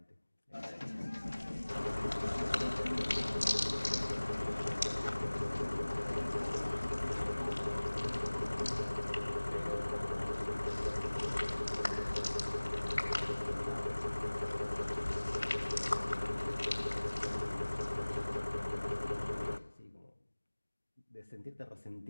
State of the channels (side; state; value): both; inverted; correlation -1.00